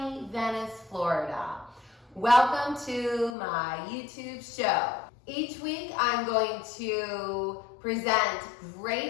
Venice, Florida. Welcome to my YouTube show. Each week I'm going to present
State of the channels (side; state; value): right; drops out; at 3.4 s